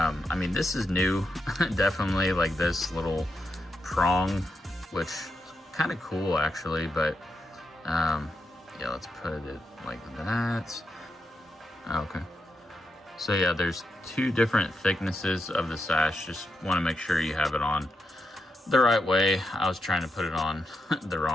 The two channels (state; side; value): normal; both; correlation 0.84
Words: mean, this is new, definitely, like this little prong, which is kind of cool actually, but yeah, let's put it like that. Okay. So yeah, there's two different thicknesses of the sash. Just want to make sure you have it on the right way. I was trying to put it on the